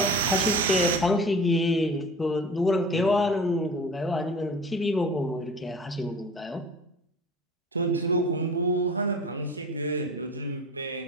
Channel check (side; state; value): both; normal; correlation 0.39